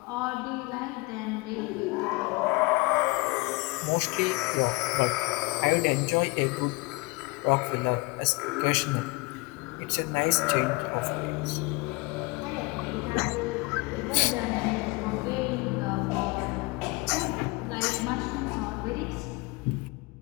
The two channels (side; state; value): right; quieter; 25.3 dB